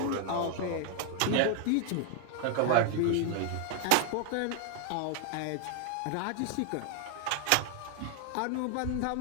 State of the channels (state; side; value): different; both; correlation 0.00